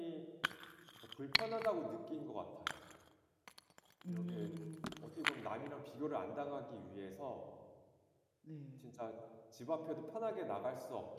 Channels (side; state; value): both; identical; correlation 1.00